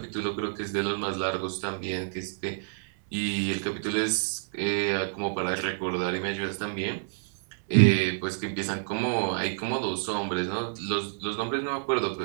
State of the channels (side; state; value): left; silent; 58 dB below the other